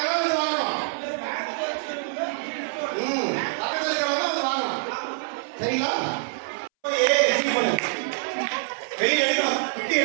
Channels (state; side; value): silent; left; 61 dB below the other